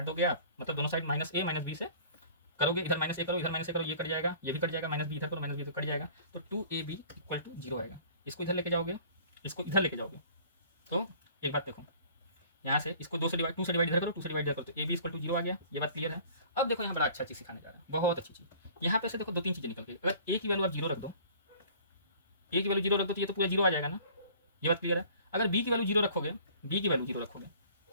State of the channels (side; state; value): both; inverted; correlation -0.49